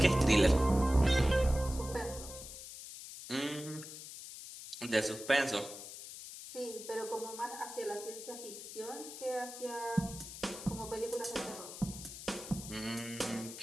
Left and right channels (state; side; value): noise; left; hiss, 11 dB below the sound